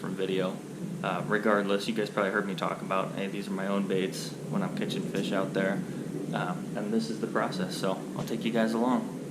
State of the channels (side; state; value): both; identical; correlation 1.00